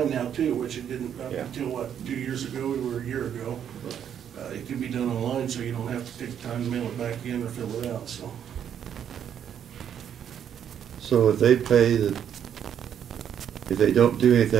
now too, which it didn't up Yeah. until, what, 2 years ago or a year ago. It can be done online, so you don't have to take the time to mail it back in or fill it out, so. so if they pay if they don't do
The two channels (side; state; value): left; quieter; 9.0 dB